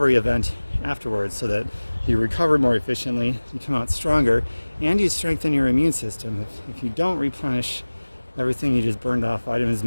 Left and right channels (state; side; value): inverted; both; correlation -1.00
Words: event afterwards, so that you recover more efficiently, you come out stronger, and you strengthen your immune system. If you don't replenish everything you just burned off, vitamins,